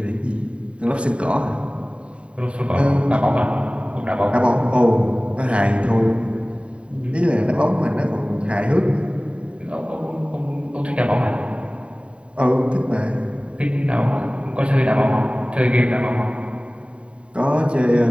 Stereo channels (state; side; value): late; left; 0.060 ms